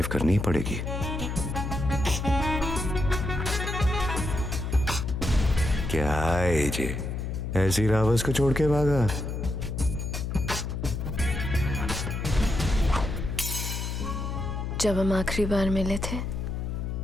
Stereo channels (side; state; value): left; noise; hum, 3 dB below the sound